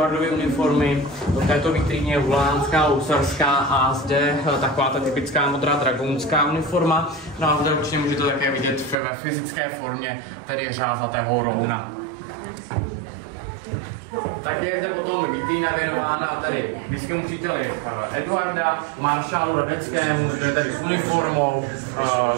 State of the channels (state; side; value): drops out; left; at 9.0 s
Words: uniformy, v této vitríně je hulánská, lusarská a zde taková ta typická modrá dragounská uniforma. No a zde určitě můžete také vidět ve fyzické formě, tedy řázatého rouna. Tak je zde potom vitrína věnována tady blízkému příteli Eduarda, maršálu Radeckému, zde tady s uniformou,